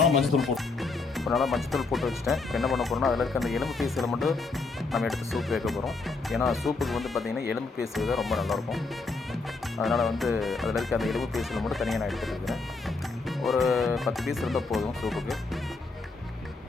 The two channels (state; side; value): quieter; right; 3.9 dB